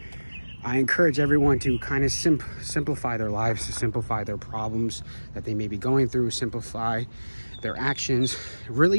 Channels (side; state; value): both; inverted; correlation -1.00